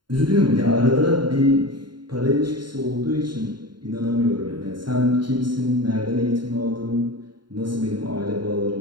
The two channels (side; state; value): left; late; 0.72 ms